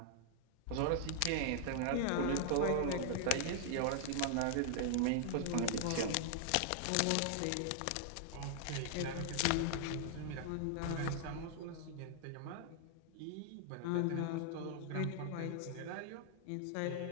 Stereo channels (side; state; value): both; different; correlation 0.00